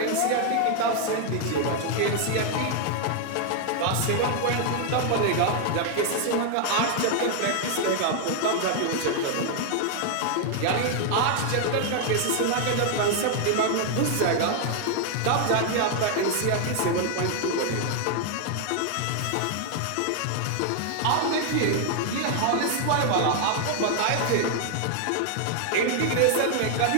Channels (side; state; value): both; different; correlation 0.00